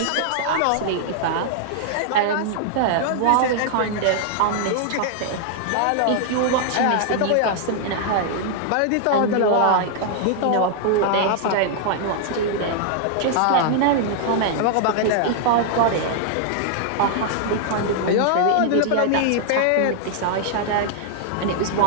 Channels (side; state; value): both; different; correlation -0.01